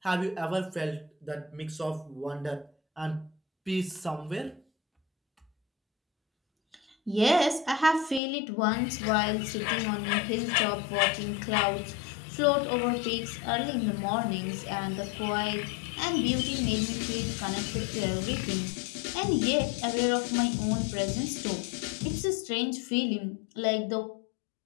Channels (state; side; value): drops out; right; at 8.2 s